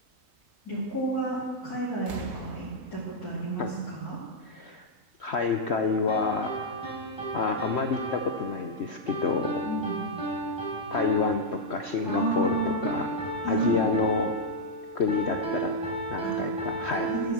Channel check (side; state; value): both; normal; correlation -0.04